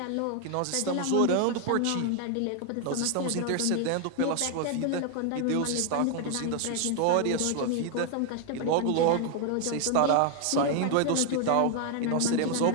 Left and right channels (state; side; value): different; both; correlation 0.00